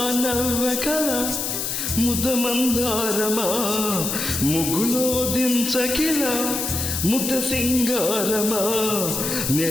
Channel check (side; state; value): left; noise; hiss, 2 dB below the sound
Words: నవ్వకల ముదమందారమా, ముగ్గులో దించకిల ముద్ద సింగారమా,